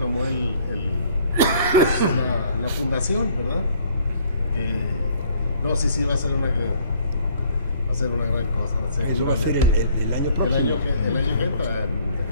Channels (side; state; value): both; inverted; correlation -0.60